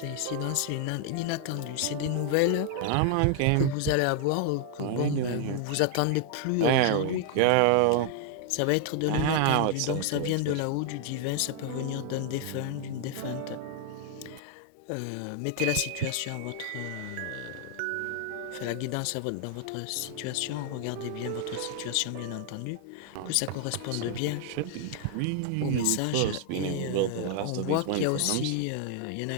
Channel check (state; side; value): different; both; correlation 0.00